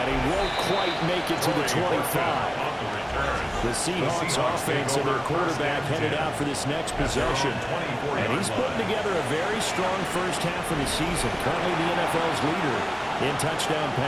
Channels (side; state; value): both; identical; correlation 1.00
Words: he won't quite make it to the 25. The Seahawks offense and their quarterback headed out for this next possession. And he's putting together a very strong first half of the season. Currently the NFL's leader in touchdown